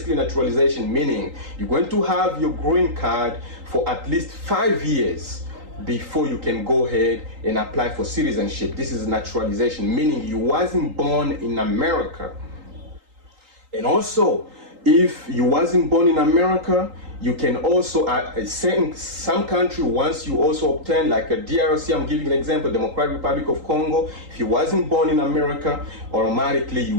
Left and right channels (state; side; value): late; left; 3.8 ms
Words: naturalization meaning you're going to have your green card for at least 5 years before you can go ahead and apply for citizenship. This is naturalization, meaning you wasn't born in America. And also, if you wasn't born in America, you can also, some country, once you also obtain, like a DRC, I'm giving an example, Democratic Republic of Congo, if you wasn't born in America, automatically